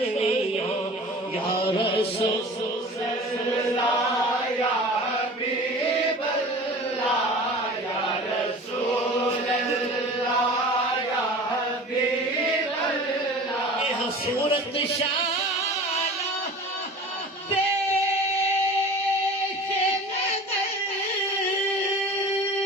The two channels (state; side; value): normal; both; correlation 0.40